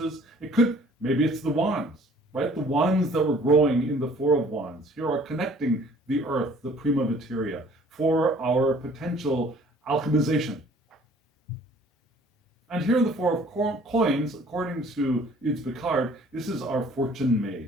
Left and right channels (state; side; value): normal; both; correlation 0.55